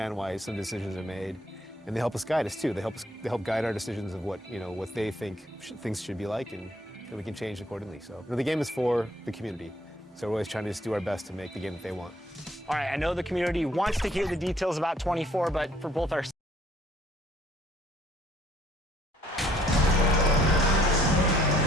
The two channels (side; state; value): both; normal; correlation 0.63